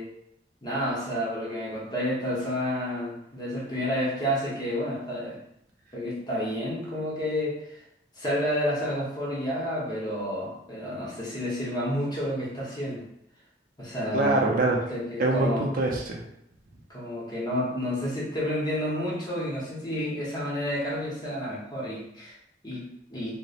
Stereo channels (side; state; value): both; normal; correlation 0.38